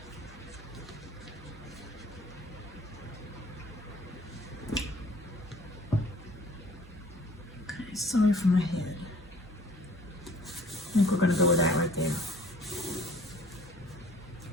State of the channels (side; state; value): both; normal; correlation 0.53